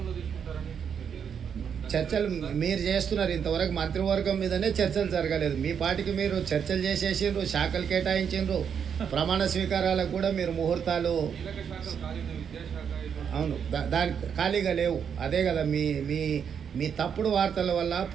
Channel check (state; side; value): quieter; left; 7.5 dB